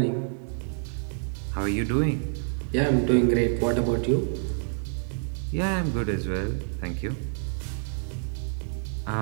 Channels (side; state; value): left; silent; digital silence